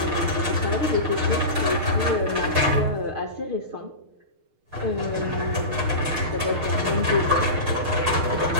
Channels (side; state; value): left; late; 6.5 ms